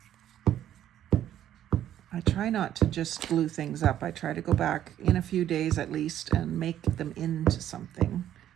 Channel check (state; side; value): quieter; left; 11.3 dB